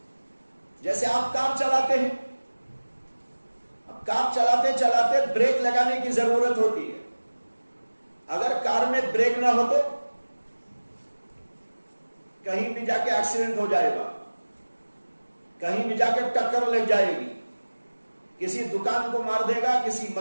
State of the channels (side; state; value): both; inverted; correlation -1.00